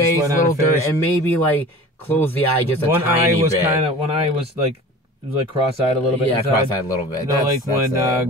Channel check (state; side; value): normal; both; correlation 0.40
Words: little dirt, and maybe like close the eye just a tiny bit. One eye was like it was like cross-eyed a little bit. Yeah, inside. cross-eyed a little bit. Like